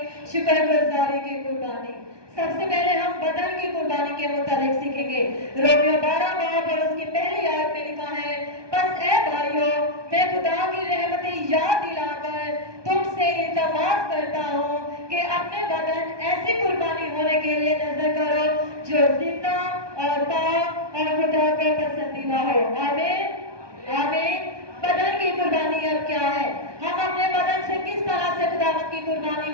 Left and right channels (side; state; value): left; late; 1.2 ms